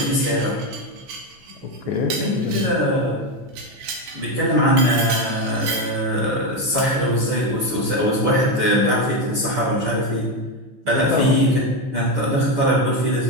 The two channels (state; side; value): late; left; 15 ms